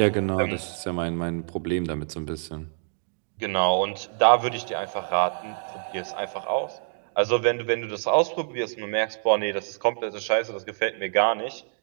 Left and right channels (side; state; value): left; silent; digital silence